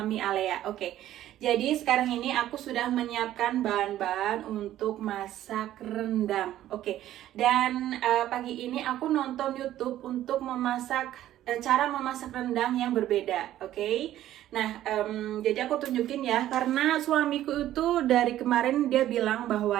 Alea. Oke, jadi sekarang ini aku sudah menyiapkan bahan-bahan untuk masak rendang. Oke, dan pagi ini aku nonton YouTube untuk memasak cara memasak rendang yang berbeda. Oke. Nah, jadi aku tunjukin ya, karena suamiku itu dari kemarin dia bilang bahwa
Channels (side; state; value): left; quieter; 13.0 dB